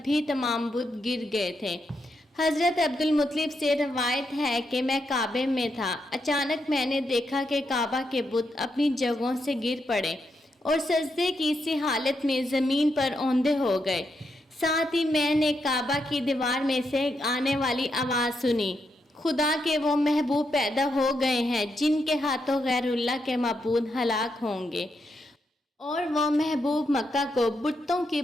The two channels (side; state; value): both; normal; correlation 0.82